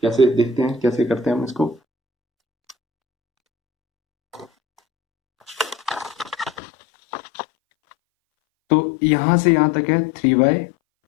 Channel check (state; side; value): drops out; right; at 6.6 s